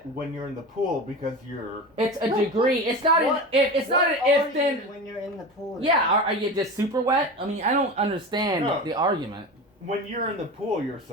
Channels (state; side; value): normal; both; correlation 0.28